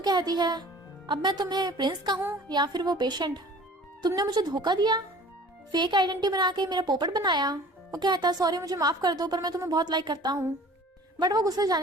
कहती है अब मैं तुम्हें प्रिंस कहूँ या फिर वो पेशेंट, तुमने मुझे धोखा दिया, फेक आइडेंटिटी बना के मेरा पोपट बनाया। वो कहता है सॉरी मुझे माफ कर दो, पर मैं तुम्हें बहुत लाइक करता हूँ। बट वो गुस्से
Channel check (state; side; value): normal; both; correlation 0.46